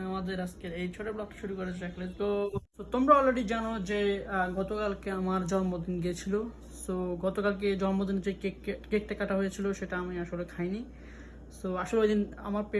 আমাদের আজকের এই ছোট ব্লগটা শুরু করে যাক। তো তোমরা অলরেডি জানো যে গতকালকে আমার জন্মদিন গিয়েছিল। সো গতকালকে জন্মদিনে যে কেকটা কাটা হয়েছিল সেটা আমি আসলে খাইনি। সো আসলে ওই দিন আমার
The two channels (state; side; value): identical; both; correlation 1.00